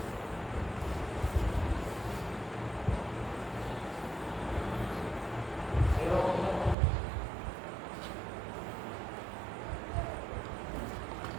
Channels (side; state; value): left; drops out; at 6.8 s